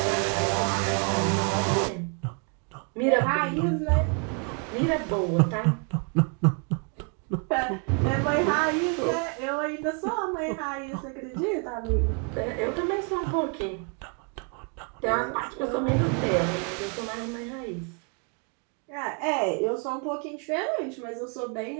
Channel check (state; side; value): quieter; left; 38.4 dB